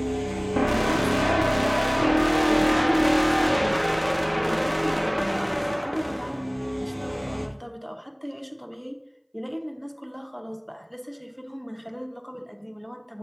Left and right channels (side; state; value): both; identical; correlation 1.00